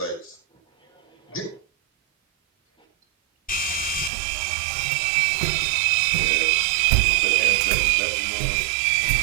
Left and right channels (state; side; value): drops out; left; at 4.1 s